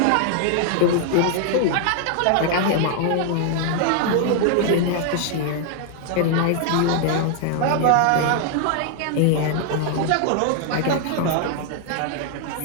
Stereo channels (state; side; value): different; both; correlation 0.00